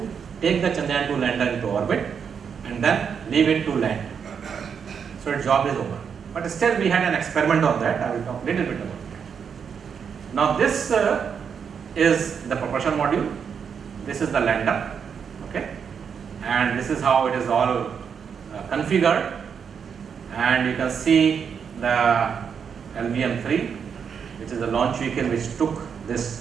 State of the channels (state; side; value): quieter; left; 6.9 dB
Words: take the Chandrayaan 2 lander into orbit and then leave it to land. So its job is over. But still we had an experiment on that, I will talk a little bit about that. Now this is the propulsion module, this is the lander, okay, and this is how it is all configured, and you can see the LVM-3, which is the launch vehicle which took